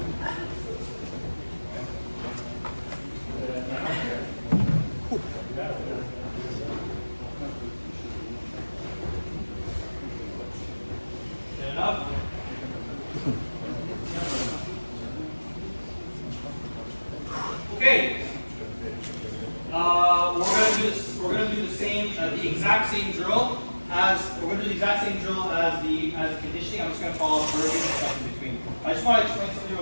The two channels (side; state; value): both; inverted; correlation -1.00